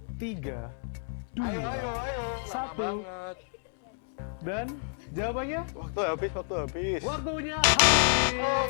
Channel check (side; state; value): right; silent; 58 dB below the other